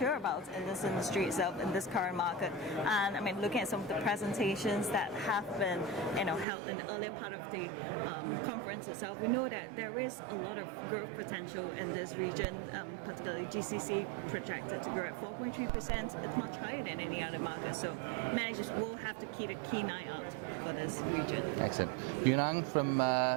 about in this industry itself, in this current market. And looking at some of the presentations that have been held in the earlier part of the conference itself, we know that there is a lot of growth potential in this region, particularly GCC projected to grow at 4.3%. It's much higher than any other market. So managers will have to keep a keen eye out for this region. Excellent. Yoon Ng from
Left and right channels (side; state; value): left; drops out; at 6.5 s